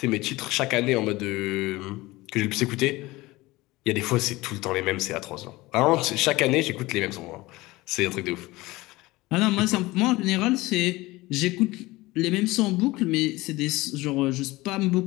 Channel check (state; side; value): quieter; right; 20.1 dB